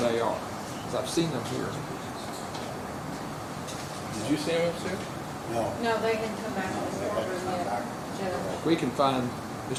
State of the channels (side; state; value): both; identical; correlation 1.00